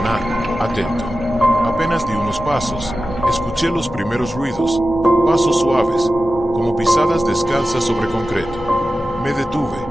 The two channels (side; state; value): both; normal; correlation 0.93